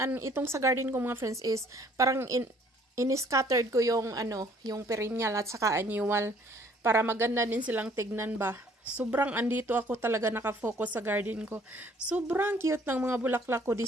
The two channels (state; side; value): normal; both; correlation 0.60